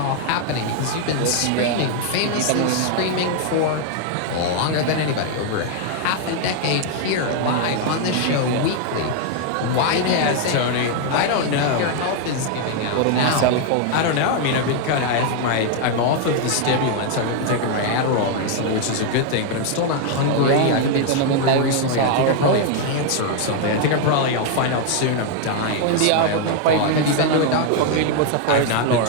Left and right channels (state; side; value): different; both; correlation 0.00